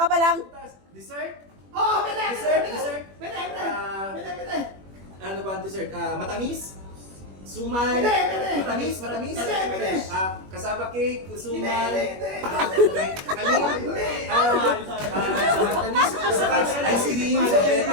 pa lang. Prutas. Dessert? Oo, pwede. Dessert? Dessert? Pwede. Pwede. Ano ba ang dessert? Matamis? Sumay? Hindi, hindi. Matamis? Matamis? Hindi, hindi. Kasaba cake? Sumay? Hindi. Kanin? Matamis? Ice cream?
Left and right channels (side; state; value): left; late; 21 ms